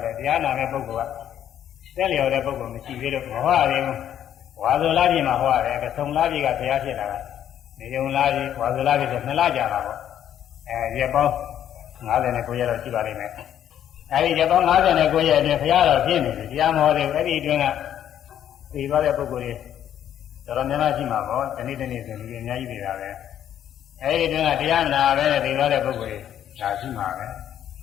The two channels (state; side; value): quieter; right; 10.4 dB